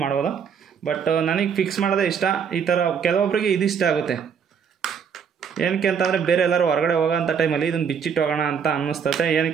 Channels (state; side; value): quieter; left; 6.9 dB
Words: ಮಾಡ್ಬೋದು. ಬಟ್ ನನಗೆ ಫಿಕ್ಸ್ ಮಾಡೋದೇ ಇಷ್ಟ. ಈ ಥರ ಕೆಲವೊಬ್ಬರಿಗೆ ಇದು ಇಷ್ಟ ಆಗುತ್ತೆ. ಏನಕ್ಕೆ ಅಂತಂದರೆ ಬೇರೆ ಎಲ್ಲರೂ ಹೊರಗಡೆ ಹೋಗೋಂಥ ಟೈಮಲ್ಲಿ ಇದನ್ನು ಬಿಚ್ಚಿಟ್ಟು ಹೋಗೋಣ ಅಂತ ಅನ್ನಿಸ್ತತೆ.